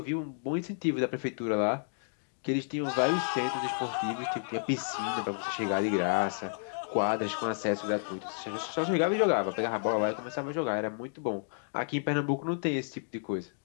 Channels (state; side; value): silent; right; digital silence